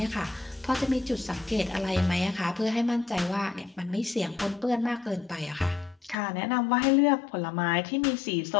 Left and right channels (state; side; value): drops out; right; at 6.2 s